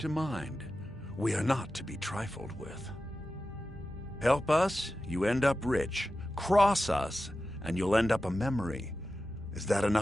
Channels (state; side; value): normal; both; correlation 0.93